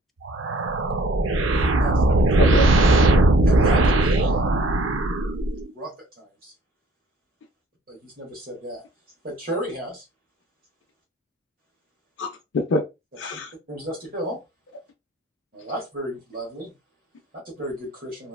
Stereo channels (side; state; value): both; normal; correlation 0.56